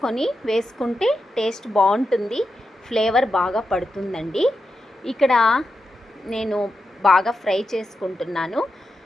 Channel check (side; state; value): both; normal; correlation 0.88